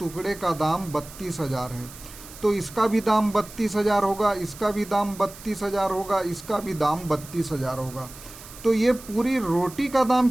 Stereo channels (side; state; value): right; noise; hiss, 17 dB below the sound